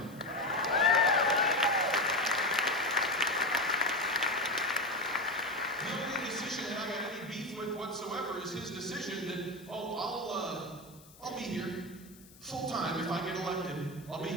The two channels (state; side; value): noise; left; hiss, 23 dB below the sound